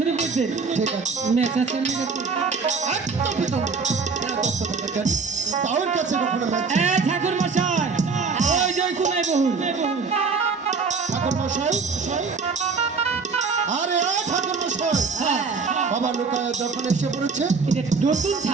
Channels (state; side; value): quieter; left; 4.8 dB